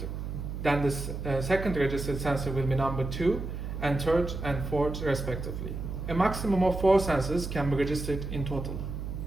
registered sensor will be number 2, and third and fourth respectively. A maximum of 4 sensors can be registered in total.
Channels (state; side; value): noise; right; hum, 6 dB below the sound